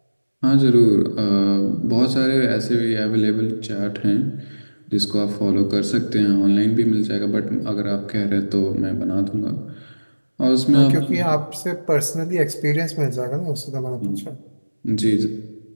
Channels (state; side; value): inverted; both; correlation -1.00